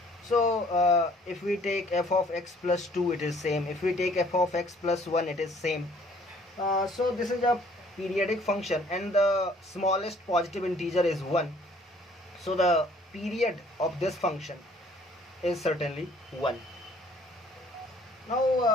So if we take f of x plus 2, it is same. If we take f of x plus 1, it is same. So this is a periodic function and the smallest positive integer is 1. So the period of this function is certainly 1.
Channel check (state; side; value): normal; both; correlation 0.58